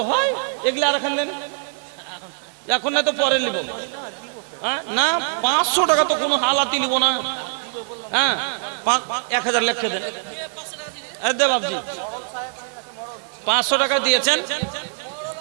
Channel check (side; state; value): left; silent; digital silence